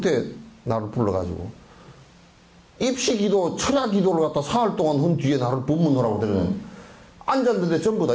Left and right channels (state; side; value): identical; both; correlation 1.00